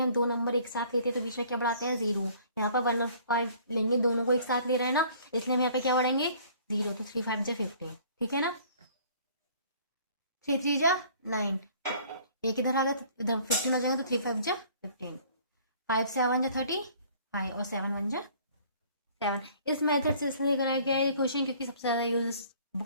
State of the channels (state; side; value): inverted; both; correlation -0.54